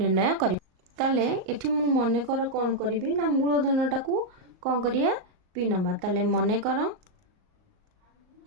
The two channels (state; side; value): late; left; 38 ms